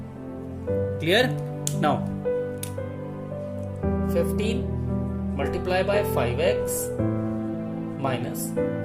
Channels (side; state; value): both; identical; correlation 1.00